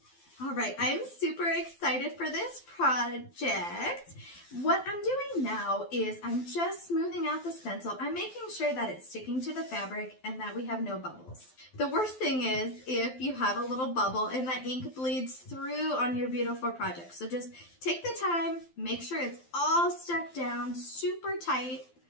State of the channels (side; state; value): right; late; 12 ms